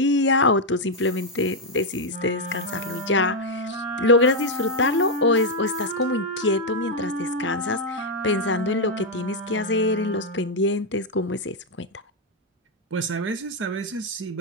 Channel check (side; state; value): both; normal; correlation 0.01